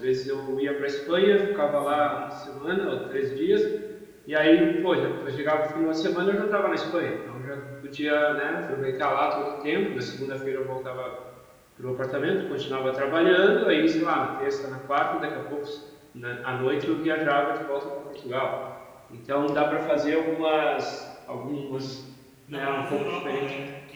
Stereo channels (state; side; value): identical; both; correlation 1.00